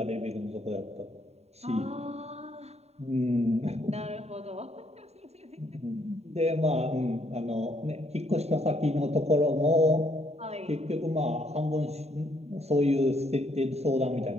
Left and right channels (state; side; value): late; left; 0.31 ms